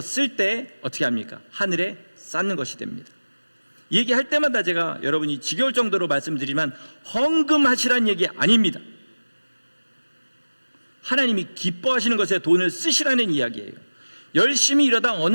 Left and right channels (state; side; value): inverted; both; correlation -1.00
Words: 때 어떻게 합니까? 하늘에 쌓는 것이 됩니다. 얘기할 때마다 제가 여러분이 지겨울 정도로 말씀드리지만 헌금하시라는 얘기 아닙니다. 하나님이 기뻐하시는 것에 돈을 쓰시라는 이야기예요. 열심히 이러다